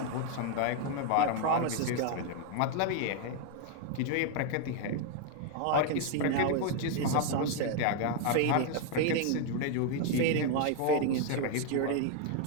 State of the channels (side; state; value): both; different; correlation 0.01